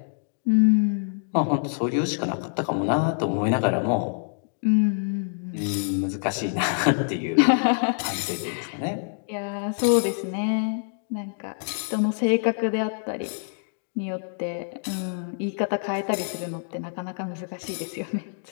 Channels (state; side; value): silent; right; digital silence